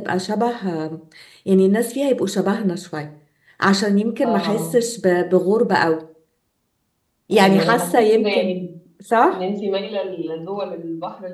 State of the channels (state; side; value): identical; both; correlation 1.00